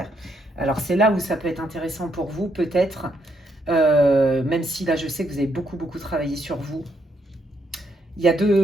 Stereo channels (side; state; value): both; normal; correlation 0.75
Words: Alors c'est là où ça peut être intéressant pour vous, peut-être, même si là je sais que vous avez beaucoup travaillé sur vous. Il y a